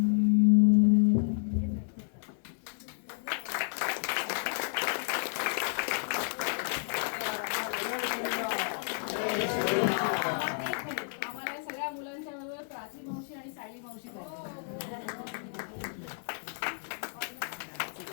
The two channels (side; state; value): right; silent; 57 dB below the other